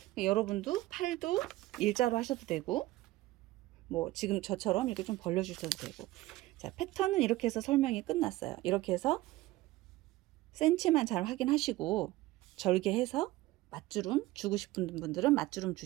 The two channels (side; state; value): left; quieter; 17.6 dB